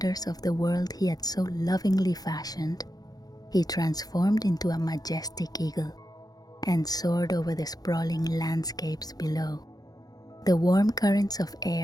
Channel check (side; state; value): right; late; 0.19 ms